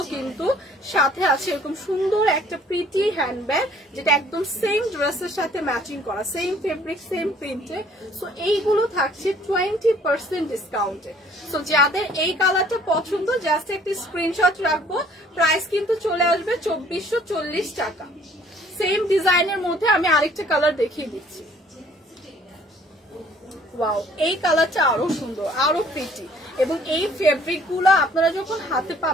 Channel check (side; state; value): both; normal; correlation 0.58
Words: কিন্তু সাথে আছে এরকম সুন্দর একটা প্রিটি হ্যান্ডব্যাগ, যেটা একদম সেম ড্রেসের সাথে ম্যাচিং করা, সেম ফেব্রিক সেম প্রিন্টে। সো এইগুলো থাকছে 20% ডিসকাউন্টে। সো যাদের এই কালারটা পছন্দ জাস্ট একটি স্ক্রিনশট রাখবো, প্রাইস কিন্তু চলে আসবে 2440 টাকা। সেম ডিজাইনের মধ্যে আমি আরেকটা কালার দেখিয়ে দিচ্ছি। ওয়াও, এই কালারটা আরো সুন্দর, আরো প্রিটি, এবং এই ফেব্রিক গুলো আপনারা যখন হাতে